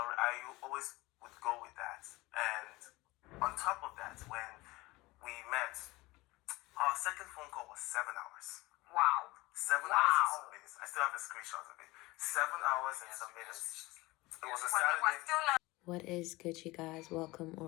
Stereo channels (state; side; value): quieter; right; 21.0 dB